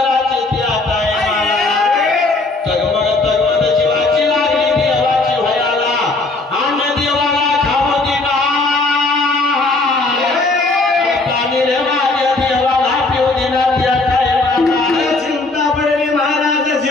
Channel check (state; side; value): quieter; right; 3.3 dB